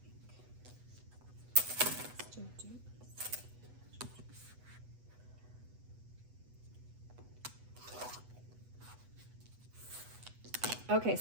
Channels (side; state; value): left; late; 8.1 ms